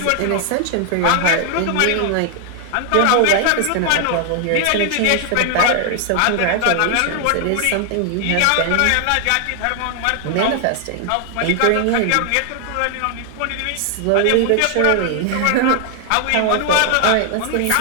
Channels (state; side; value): different; both; correlation 0.00